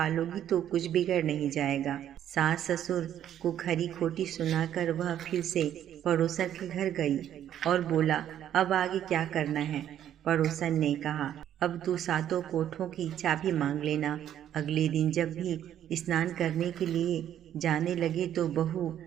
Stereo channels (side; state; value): left; quieter; 10.7 dB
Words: लोगी तो कुछ बिगड़ नहीं जाएगा। सास ससुर को खरी खोटी सुनाकर वह फिर से पड़ोसन के घर गई और बोला, अब आगे क्या करना है। पड़ोसन ने कहा, अब तू सातों कोठों की चाबी मांग लेना। अगले दिन जब भी स्नान करने के लिए जाने लगे तो बहू